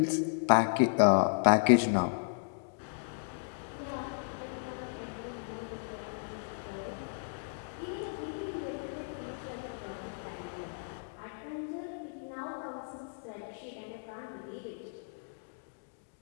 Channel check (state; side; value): silent; right; digital silence